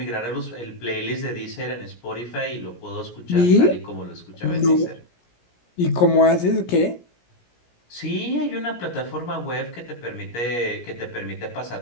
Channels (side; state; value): right; late; 17 ms